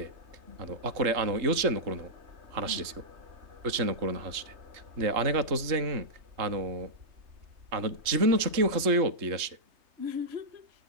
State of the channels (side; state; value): left; late; 3.7 ms